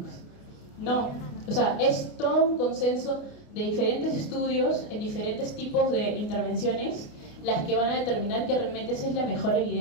No, o sea, es todo un consenso de diferentes estudios en diferentes tipos de intervenciones las que van a determinar que realmente esa es la mejor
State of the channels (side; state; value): right; late; 28 ms